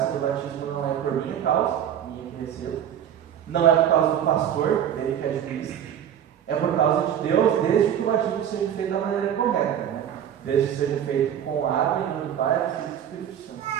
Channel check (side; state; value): left; quieter; 9.7 dB